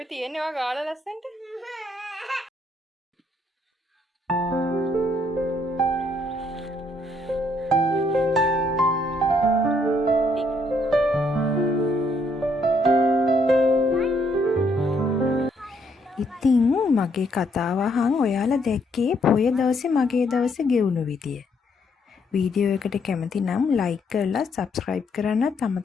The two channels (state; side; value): normal; both; correlation 0.71